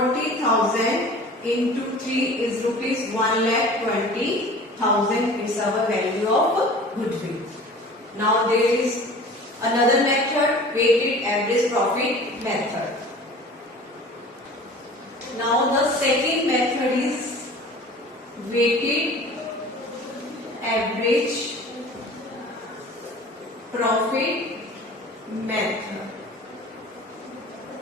into 3 is rupees 1,20,000. It's our value of goodwill. Now there is another method, weighted average profit method. Now the second method is weighted average profit method.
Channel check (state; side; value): normal; both; correlation 0.43